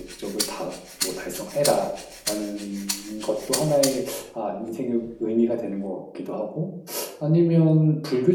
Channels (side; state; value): both; identical; correlation 1.00